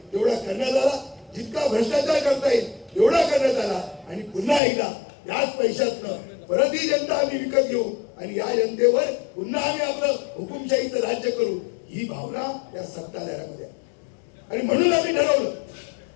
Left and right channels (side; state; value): right; drops out; at 4.6 s